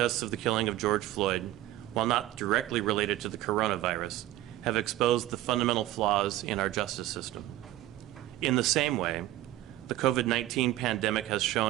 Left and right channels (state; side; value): quieter; left; 15.0 dB